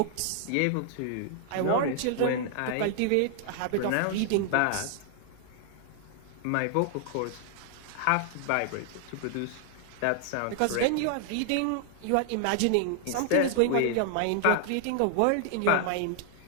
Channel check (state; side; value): different; both; correlation -0.01